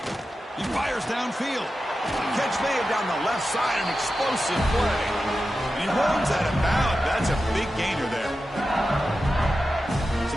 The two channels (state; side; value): normal; both; correlation 0.92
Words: He fires downfield. Catch made down the left side, an explosive play. And he runs out of bounds. That's a big gainer there.